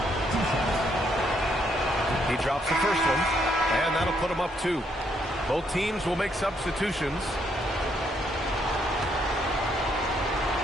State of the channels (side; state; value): both; normal; correlation 0.73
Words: He drops the first one, and that'll put him up 2. Both teams will make substitutions.